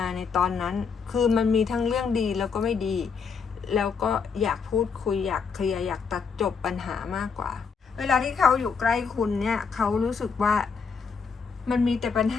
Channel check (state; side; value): quieter; right; 5.6 dB